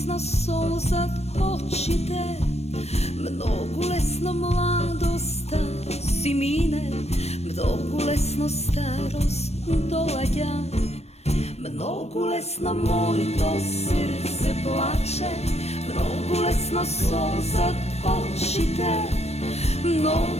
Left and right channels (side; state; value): right; late; 0.31 ms